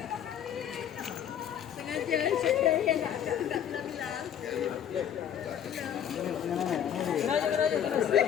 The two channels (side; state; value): right; quieter; 9.4 dB